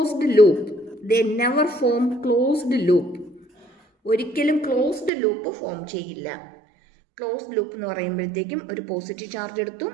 loop. ഒരിക്കലും ക്ലോസ്ഡ് ലൂപ്പ് ഫോം ചെയ്യില്ല. ക്ലോസ്ഡ് ലൂപ്പ് എന്ന് പറയുമ്പോഴത്തേക്കും ഒരു പോസിറ്റീവ് ചാർജ് എടുത്തു,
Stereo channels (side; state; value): left; drops out; at 5.1 s